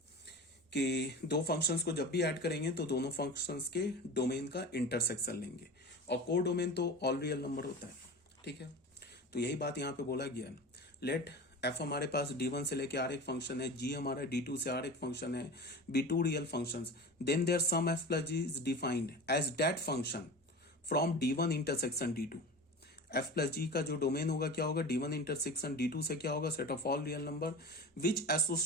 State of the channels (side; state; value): both; normal; correlation 0.32